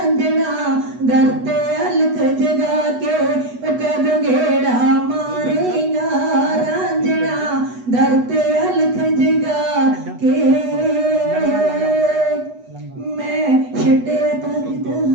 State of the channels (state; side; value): late; left; 8.1 ms